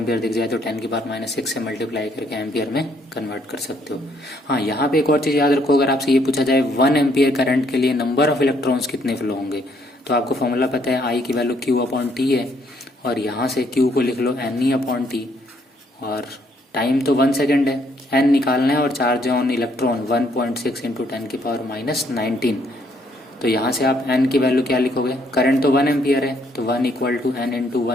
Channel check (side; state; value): both; normal; correlation 0.69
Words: दिख जाए तो 10⁻6 से मल्टीप्लाई करके एम्पियर में कन्वर्ट कर सकते हो। हाँ, यहाँ पे एक और चीज़ याद रखो, अगर आपसे ये पूछा जाए 1 एम्पियर करंट के लिए नंबर ऑफ इलेक्ट्रॉन्स कितने फ्लो होंगे, तो आपको फॉर्मूला पता है, आई की वैल्यू Q/T है, और यहाँ से Q को लिख लो NE/T, और टाइम तो 1 सेकेंड है, N निकालना है, और चार्ज ऑन इलेक्ट्रॉन 1.6 × 10⁻19। तो यहाँ से आप n की वैल्यू क्या लिखोगे, करंट तो 1 एम्पियर है, तो 1 = n ×